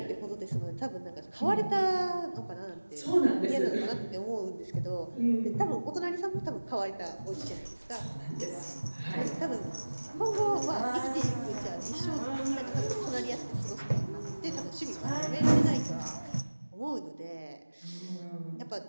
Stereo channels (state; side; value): inverted; both; correlation -1.00